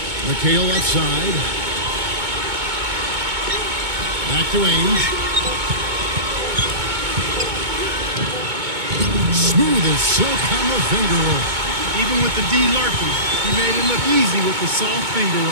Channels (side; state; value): left; late; 2.2 ms